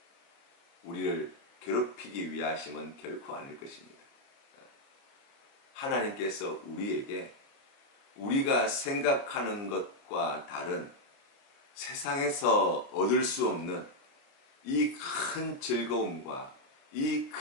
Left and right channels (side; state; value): right; late; 30 ms